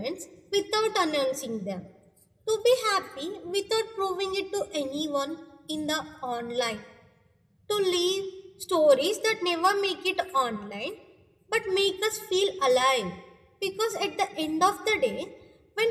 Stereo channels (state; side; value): identical; both; correlation 1.00